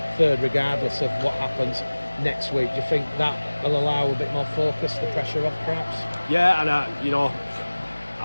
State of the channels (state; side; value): inverted; both; correlation -1.00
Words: third regardless of what happens next week. Do you think that will allow a bit more focus, the pressure off perhaps? Yeah, and